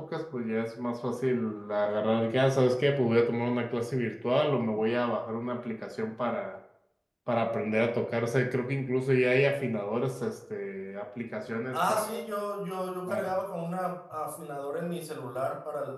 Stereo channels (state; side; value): identical; both; correlation 1.00